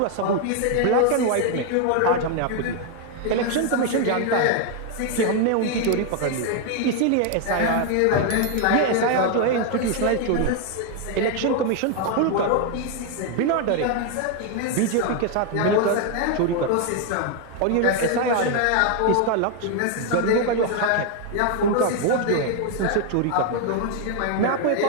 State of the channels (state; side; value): different; both; correlation 0.01